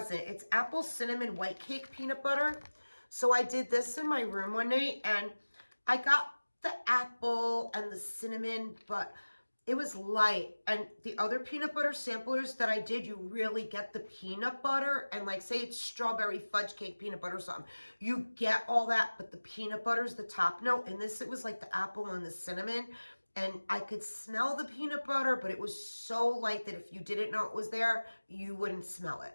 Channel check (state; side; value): inverted; both; correlation -1.00